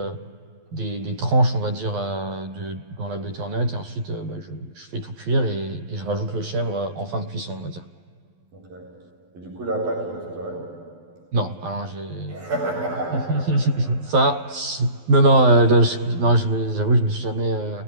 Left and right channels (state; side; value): late; left; 12 ms